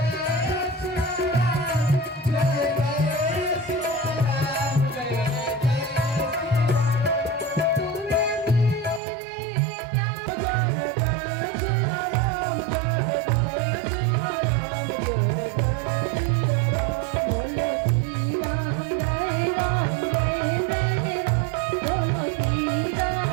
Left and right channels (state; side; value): drops out; left; at 9.0 s